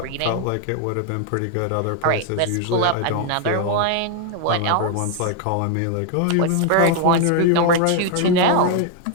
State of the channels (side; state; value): both; different; correlation 0.00